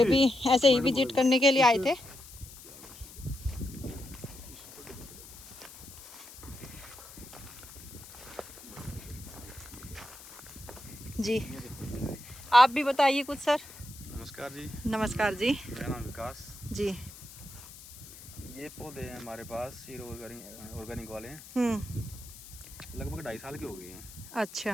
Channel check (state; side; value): noise; left; hiss, 17 dB below the sound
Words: भी ऐसे ही विजिट करने के लिए आए थे। जी, आप भी बताइए कुछ सर। नमस्कार जी, नमस्कार जी। मेरा नाम विकास जी। ये पौधे हैं हमारे पास हीरो ऑर्गेनिक वाले हैं, लगभग 2.5 साल के हो गए हैं।